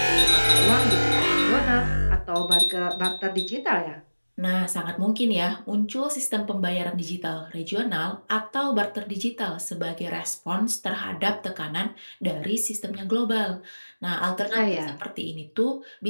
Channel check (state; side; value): inverted; both; correlation -1.00